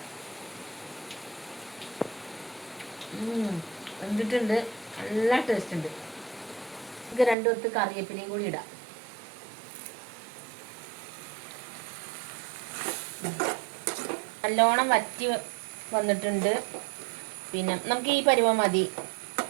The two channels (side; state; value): left; drops out; at 7.4 s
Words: വെന്തിട്ടുണ്ട്, നല്ല ടേസ്റ്റ് ഉണ്ട്. നമുക്ക് 2 കൊത്ത് കറിവേപ്പിലയും കൂടി ഇടാം. നല്ലോണം വറ്റി വന്നിട്ടുണ്ട്. പിന്നെ നമുക്ക് ഈ പരുവം മതി.